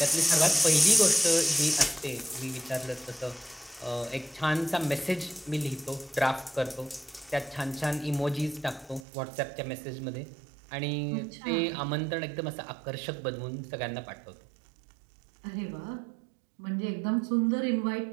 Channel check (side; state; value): left; drops out; at 9.1 s